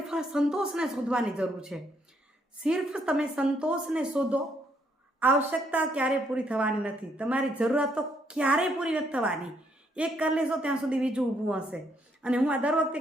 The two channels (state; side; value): normal; both; correlation 0.72